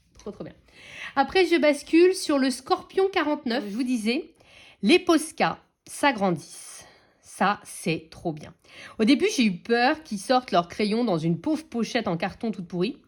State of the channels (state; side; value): identical; both; correlation 1.00